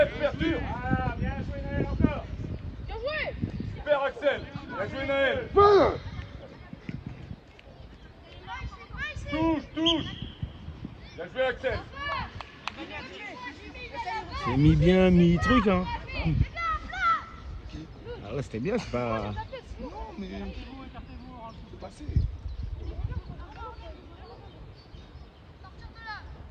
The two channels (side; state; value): both; identical; correlation 1.00